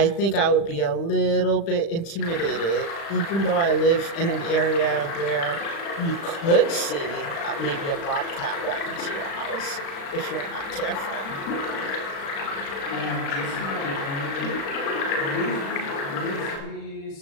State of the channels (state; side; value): late; right; 36 ms